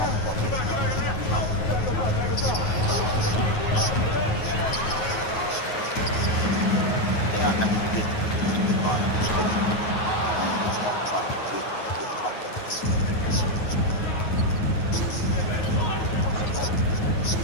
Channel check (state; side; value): late; right; 9.4 ms